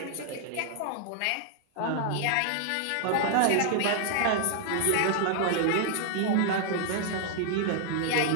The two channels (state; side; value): different; both; correlation -0.01